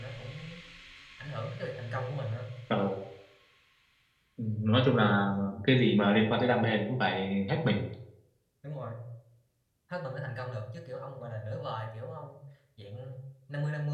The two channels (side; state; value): both; identical; correlation 1.00